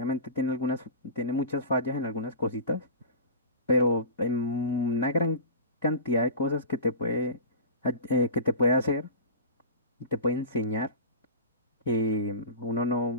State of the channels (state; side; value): inverted; both; correlation -0.32